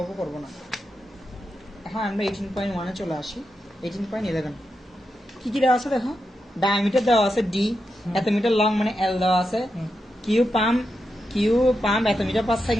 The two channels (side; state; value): both; normal; correlation 0.87